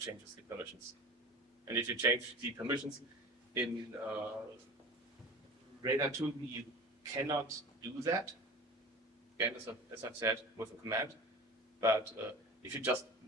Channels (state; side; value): normal; both; correlation 0.36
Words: changes the permissions. And if you change the permissions in Radar 2, you cannot do that. Again, as I've said, with a command. But if you just